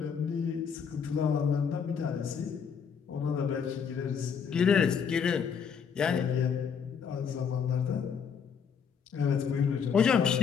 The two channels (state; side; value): quieter; right; 6.8 dB